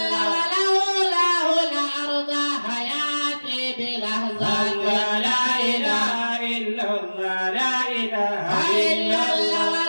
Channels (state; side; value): inverted; both; correlation -1.00